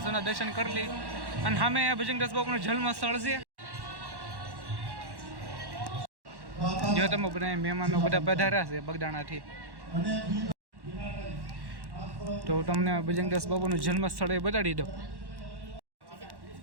દર્શન કરી લઈ. અને સામે ભજનદાસ બાપાનું જન્મ સ્થળ છે. જો તમે બધા મહેમાનો બધા પધાર્યા છે બગદાણાથી, તો તમને ભજનદાસ બાપાનું જન્મ સ્થળ એ બતાડી દઉં.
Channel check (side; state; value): left; late; 1.1 ms